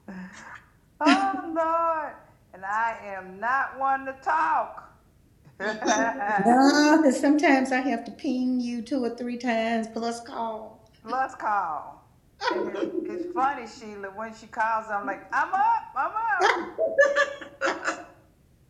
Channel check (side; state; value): both; identical; correlation 1.00